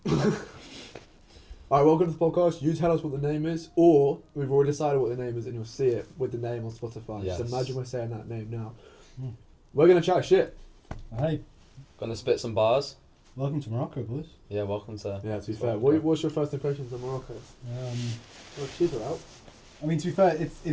Alright, welcome to the podcast. You tell us what the name is, or we've already decided what the name is and you'll see it with the name on Spotify. Yes. Just imagine we're saying that name now. Mm. We're going to chat shit. Hey, Gonna spit some bars. welcome to Morocco, boys. Yeah, welcome to. Yeah, to be It's fair. Morocco. What's your first impressions of Morocco? Well, cheaper out. I mean, to be fair,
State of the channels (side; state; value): both; identical; correlation 1.00